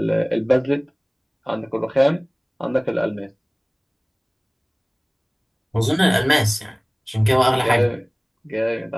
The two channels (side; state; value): both; identical; correlation 1.00